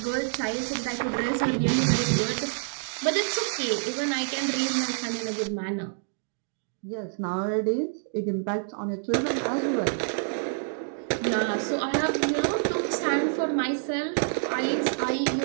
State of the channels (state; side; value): silent; left; digital silence